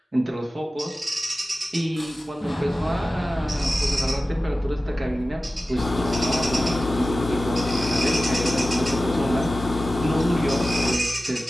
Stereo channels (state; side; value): normal; both; correlation 0.95